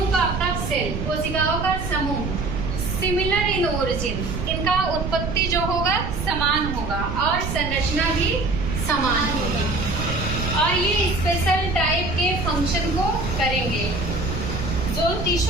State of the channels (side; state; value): right; noise; rumble, 4 dB below the sound